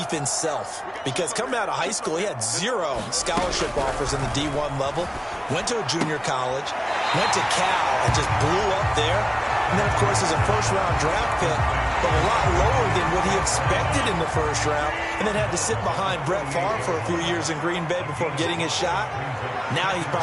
in self. Because coming out of high school, he had 0 scholarship offers in the D1 level. Went to a junior college, went to Cal, and just blew up there. And then, of course, as a first-round draft pick, but a lot lower than what he expected in the first round, and then had to sit behind Brett Favre for a few years in Green Bay before getting his shot. Now he's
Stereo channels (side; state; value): both; identical; correlation 1.00